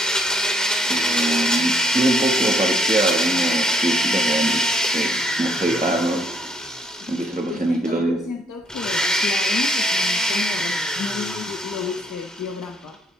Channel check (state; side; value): normal; both; correlation 0.68